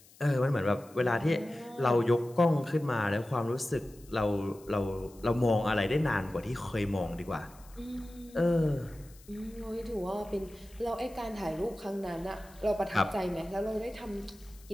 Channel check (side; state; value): left; noise; hiss, 25 dB below the sound